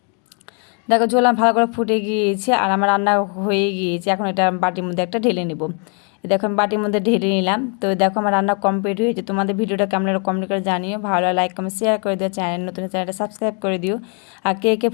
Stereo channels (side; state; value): right; quieter; 39.2 dB